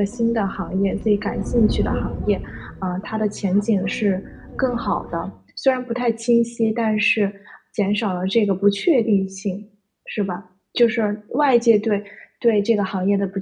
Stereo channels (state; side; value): identical; both; correlation 1.00